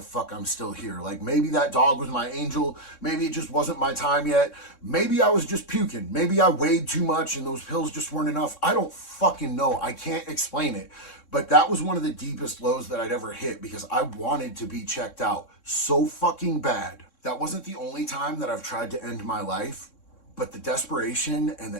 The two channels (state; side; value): late; right; 3.6 ms